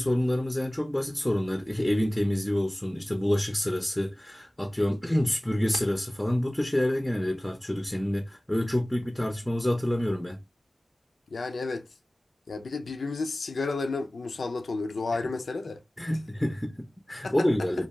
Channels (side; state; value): both; normal; correlation 0.98